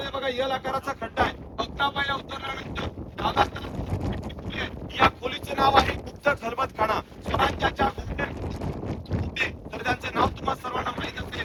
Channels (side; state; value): both; identical; correlation 1.00